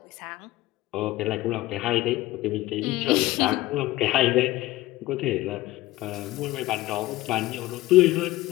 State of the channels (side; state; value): right; quieter; 17.5 dB